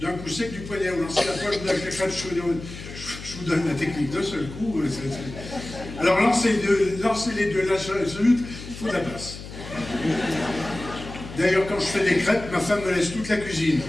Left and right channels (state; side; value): noise; left; hum, 12 dB below the sound